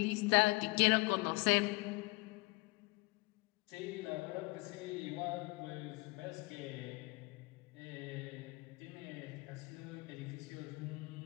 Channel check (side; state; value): right; quieter; 25.5 dB